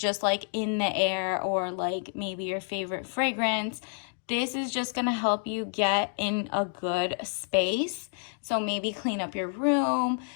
like in the air, or like maybe your favorite fragrance. This is just going to help you get in a good space. So maybe clean up your room,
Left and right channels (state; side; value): silent; right; 59 dB below the other